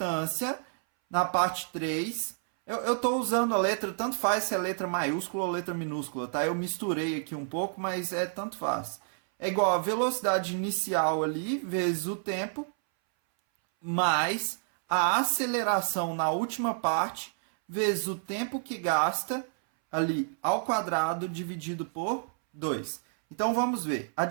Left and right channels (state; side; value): silent; left; 58 dB below the other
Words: na parte 3, eu estou usando a letra, tanto faz se é letra maiúscula ou letra minúscula, tá? Eu misturei aqui um pouco, mas tanto faz. É igual a velocidade inicial ali, vezes o tempo, mais a aceleração na última parte, vezes o tempo que gasta ali ao quadrado, dividido por 2. Então, vamos ver. A